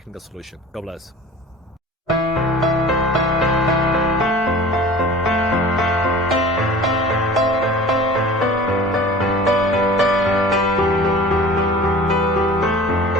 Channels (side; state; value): both; normal; correlation 0.42